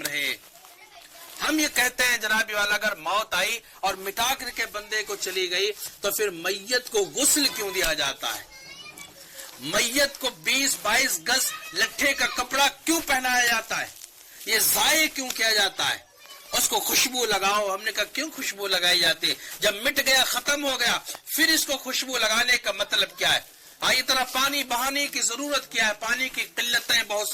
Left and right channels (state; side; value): identical; both; correlation 1.00